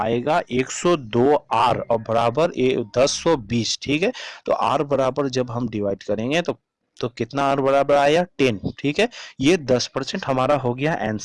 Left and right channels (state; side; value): identical; both; correlation 1.00